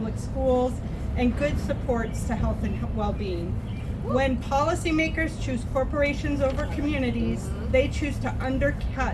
schools, and good supports to health and well-being. When policymakers choose corporations over communities, they choose to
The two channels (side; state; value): both; identical; correlation 1.00